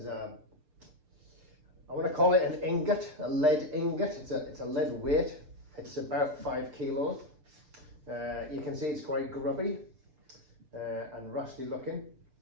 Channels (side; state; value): left; late; 6.6 ms